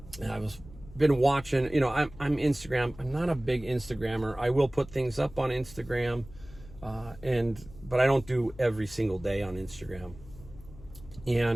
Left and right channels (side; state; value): left; noise; hum, 19 dB below the sound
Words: and I was been watching, you know, I'm Instagram. I'm not a big Instagrammer. I will put things up on Instagram, but I don't do every single day on Instagram.